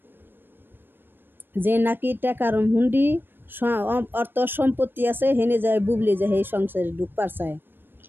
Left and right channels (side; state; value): left; late; 0.097 ms